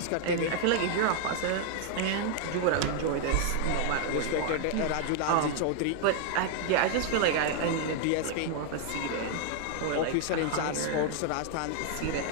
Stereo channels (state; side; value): different; both; correlation 0.00